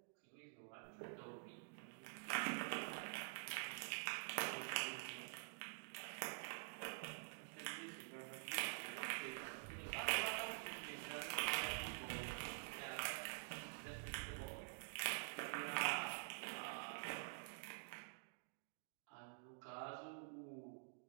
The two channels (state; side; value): silent; left; digital silence